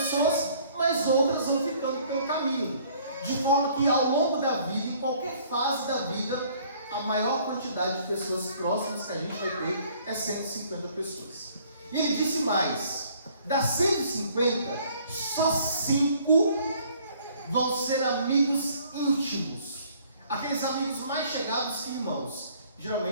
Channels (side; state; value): both; inverted; correlation -0.59